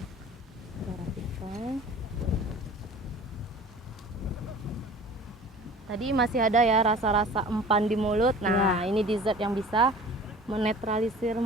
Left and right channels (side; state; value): both; normal; correlation 0.43